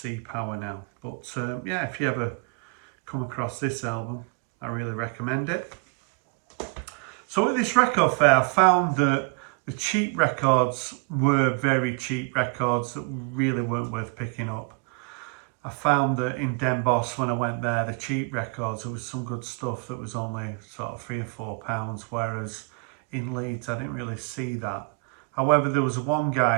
Power now. But yeah, if you ever come across this album, I really recommend it. So at this record fair, I found that the cheap records were very cheap records that really weren't worth picking up. I found that in Den Bosch, when I went there, the cheap records, there was some good stuff that was only sort of £3 or £4, whereas in Leeds, I didn't really see that. However, there was one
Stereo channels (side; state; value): left; quieter; 32.0 dB